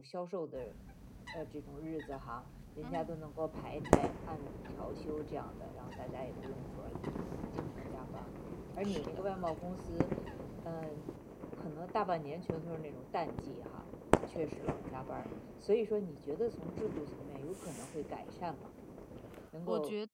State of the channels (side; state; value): both; identical; correlation 1.00